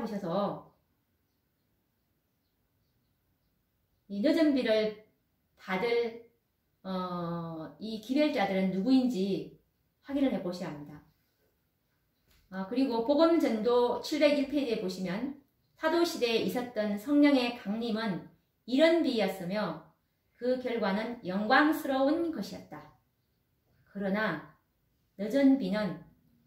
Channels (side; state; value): both; identical; correlation 1.00